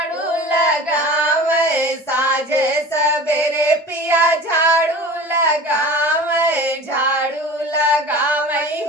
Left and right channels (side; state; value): both; normal; correlation 0.38